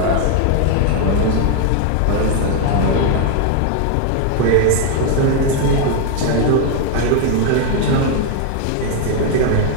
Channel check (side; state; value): both; different; correlation 0.00